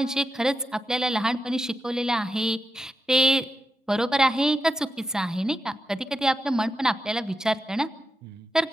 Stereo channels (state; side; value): normal; both; correlation 0.88